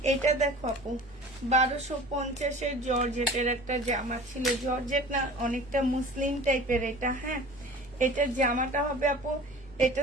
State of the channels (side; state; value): both; normal; correlation 0.42